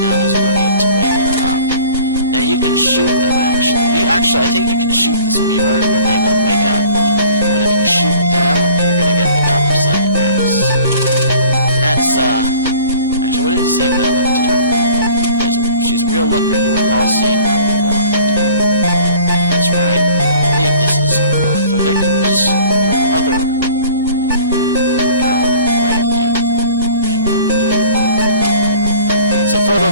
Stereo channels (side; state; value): both; inverted; correlation -0.49